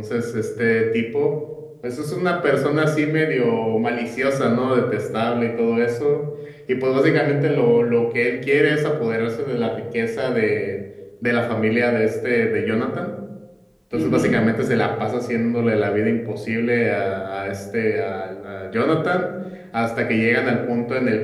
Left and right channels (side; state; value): both; identical; correlation 1.00